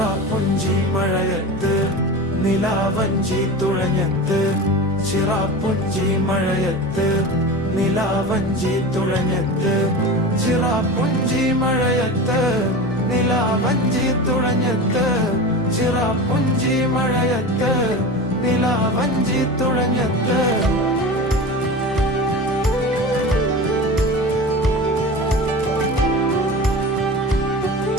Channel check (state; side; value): normal; both; correlation 0.30